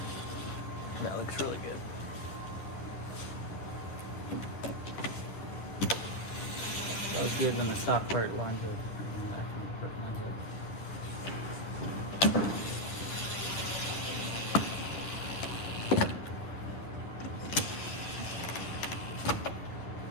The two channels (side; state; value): right; late; 10 ms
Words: That looks really good. That was good when the stock part lines up. And the aftermarket part lines up.